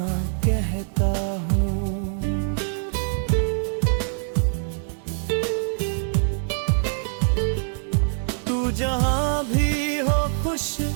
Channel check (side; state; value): left; silent; 61 dB below the other